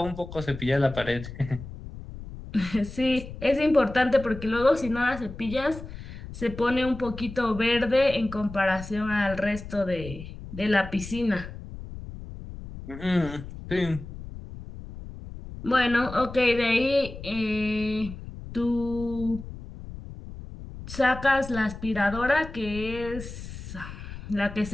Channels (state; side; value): noise; left; rumble, 12 dB below the sound